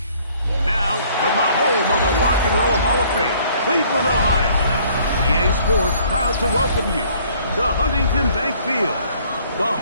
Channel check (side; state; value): both; inverted; correlation -0.59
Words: Now, from the home of the Rock and Roll Hall of Fame, Cleveland, Ohio, EA Sports proud to welcome you to Huntington Bank Field, the